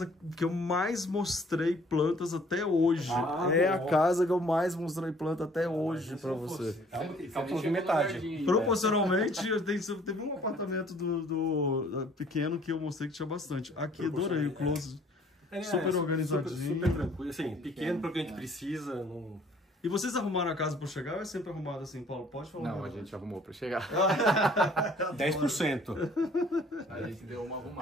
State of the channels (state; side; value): normal; both; correlation 0.57